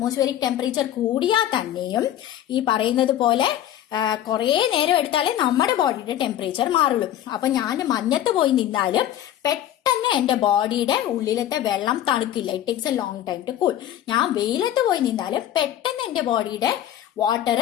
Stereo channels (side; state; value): right; quieter; 11.8 dB